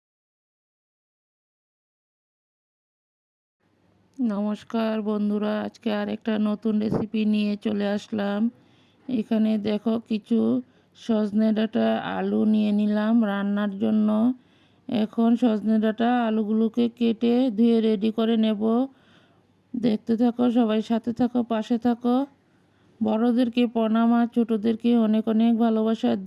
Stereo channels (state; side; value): identical; both; correlation 1.00